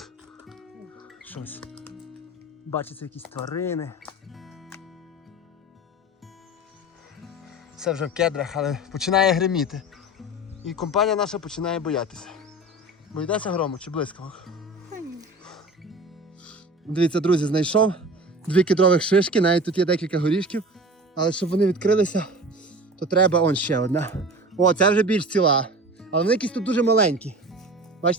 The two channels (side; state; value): both; normal; correlation 0.36